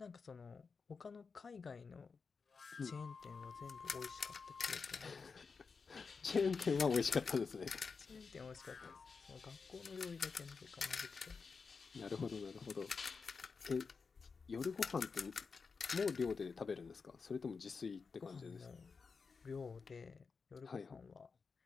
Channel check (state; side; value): quieter; right; 5.1 dB